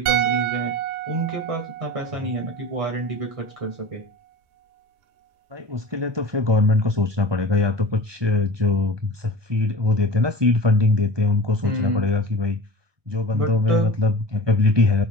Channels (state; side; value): late; left; 1.2 ms